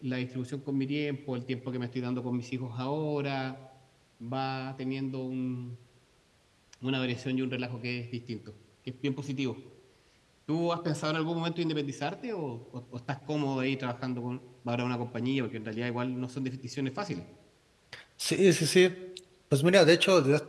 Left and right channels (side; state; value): both; identical; correlation 1.00